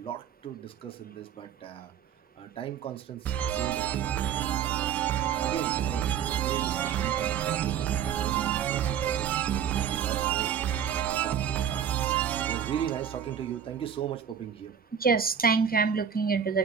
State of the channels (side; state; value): left; quieter; 8.4 dB